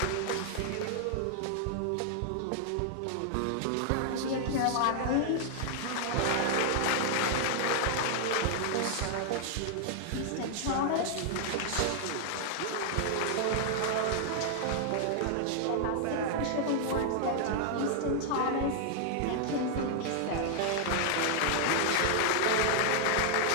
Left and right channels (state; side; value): different; both; correlation 0.00